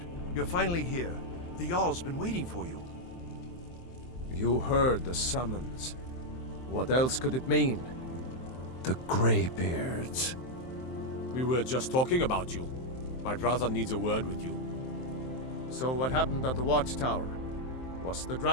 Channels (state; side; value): late; right; 23 ms